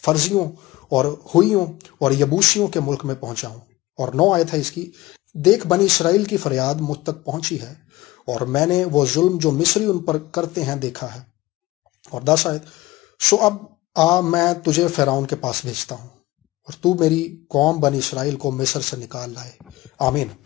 اور ہوئیوں اور یبوسیوں کے ملک میں پہنچاؤں۔ اور 9 آیت ہے اس کی، دیکھ بنی اسرائیل کی فریاد مجھ تک پہنچی ہے، اور میں نے وہ ظلم جو مصری ان پر کرتے ہیں دیکھا ہے۔ اور 10 آیت، سو اب آ، میں تجھے فرعون کے پاس بھیجتا ہوں، اور تو میری قوم بنی اسرائیل کو مصر سے نکال لائے۔ آمین۔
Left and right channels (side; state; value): right; quieter; 18.4 dB